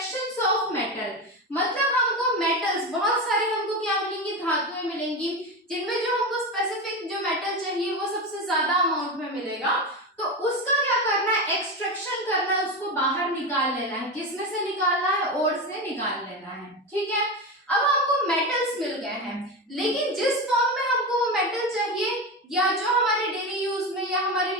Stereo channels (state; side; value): normal; both; correlation 0.20